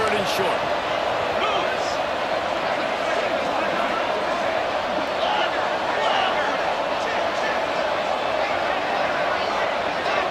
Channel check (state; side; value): identical; both; correlation 1.00